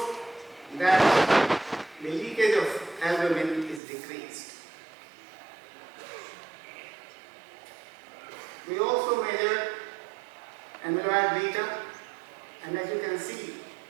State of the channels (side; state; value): left; drops out; at 3.8 s